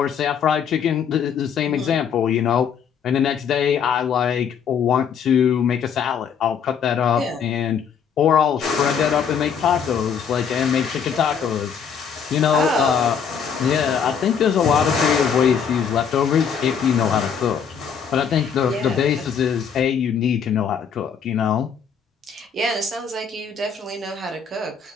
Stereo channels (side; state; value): right; quieter; 7.1 dB